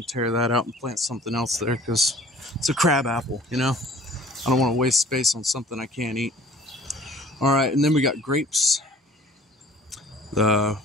to tear that out and plant something else there because it's a crabapple, you know. I don't want to waste space on something I can't eat. All right, and then we got grapes. The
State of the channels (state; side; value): normal; both; correlation 0.49